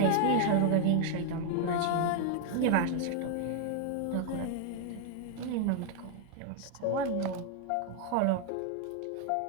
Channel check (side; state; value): both; different; correlation 0.00